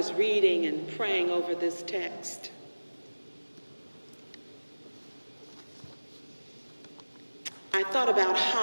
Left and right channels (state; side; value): inverted; both; correlation -1.00